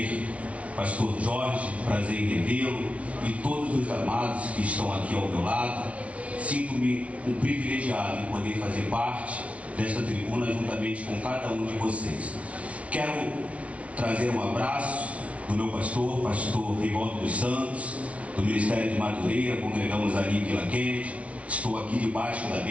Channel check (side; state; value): left; late; 0.064 ms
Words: pastor Jorge, prazer em revê-lo, e todos os amados que estão aqui ao meu lado. Sinto-me um privilegiado em poder fazer parte desta tribuna juntamente com cada um de vocês. Quero trazer um abraço do meu pastor Rivaldo dos Santos, do Ministério de Madureira. Congregamos ali em Vila Kennedy. Estou aqui debaixo da